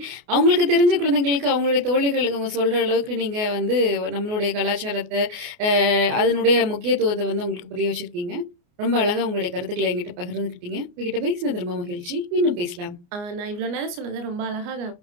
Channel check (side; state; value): left; late; 29 ms